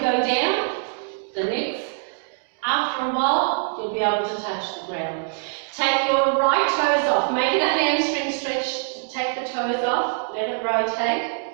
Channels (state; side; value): silent; left; 62 dB below the other